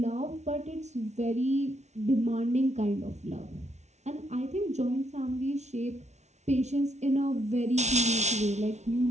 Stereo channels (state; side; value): late; left; 0.32 ms